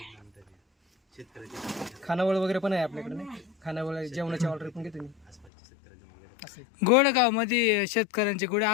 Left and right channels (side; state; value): right; drops out; at 5.5 s